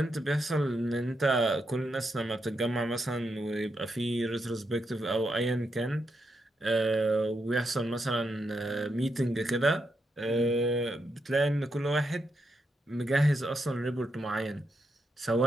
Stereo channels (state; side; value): normal; both; correlation 0.82